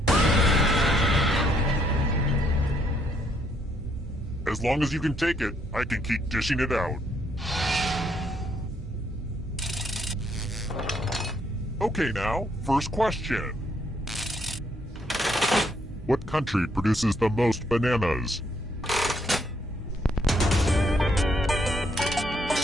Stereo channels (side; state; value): both; normal; correlation 0.71